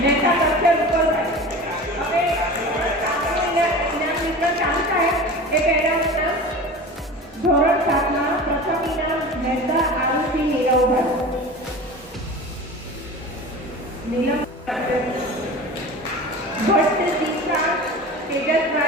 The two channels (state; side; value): normal; both; correlation 0.34